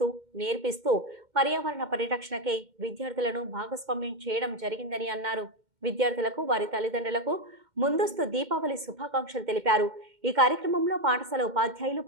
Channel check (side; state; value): left; late; 2.1 ms